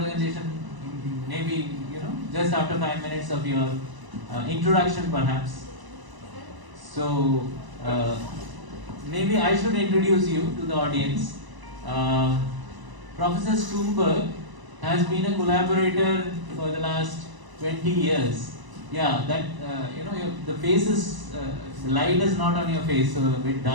Maybe just after 5 minutes of your introduction, perhaps. So maybe I should introduce you to the audience. Professor Stroomberg has been a collaborator for the last 20 years. Yeah, that the face is the light is not on your face, so a bit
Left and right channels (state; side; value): late; left; 1.0 ms